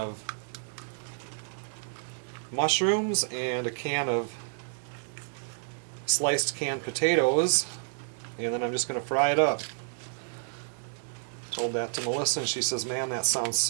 mushrooms and a can of sliced canned potatoes. And then I'm just going to fry it up. Told that to Melissa and she says, man, that sounds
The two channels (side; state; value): left; silent; digital silence